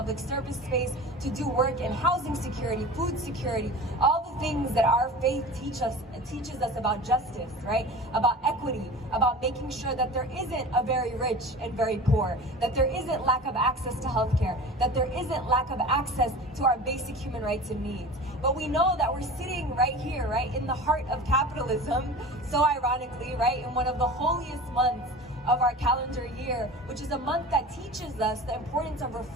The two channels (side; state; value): both; normal; correlation 0.36